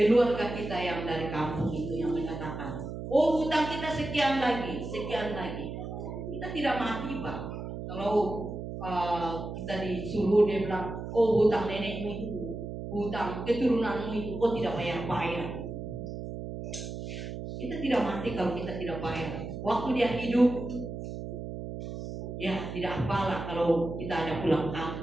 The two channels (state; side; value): noise; right; hum, 7 dB below the sound